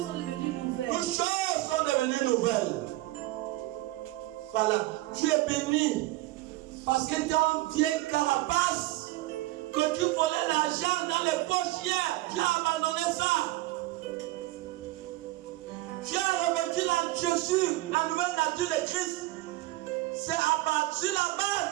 sont devenues nouvelles. Toutes choses sont devenues nouvelles. Voilà, tu es béni. Parce que ton vieille carapace, que tu volais l'argent dans les poches hier, tu as abandonné ça. Tu as revêtu Jésus, la nouvelle nature de Christ. C'est à partir de la base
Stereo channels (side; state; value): left; quieter; 18.1 dB